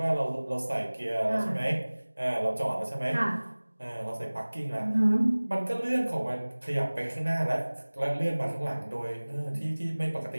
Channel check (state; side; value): inverted; both; correlation -1.00